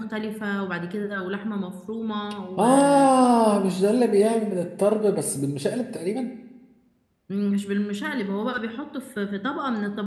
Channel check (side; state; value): both; identical; correlation 1.00